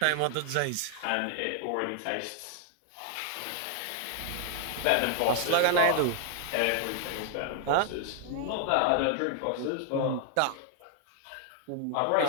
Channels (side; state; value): both; different; correlation 0.00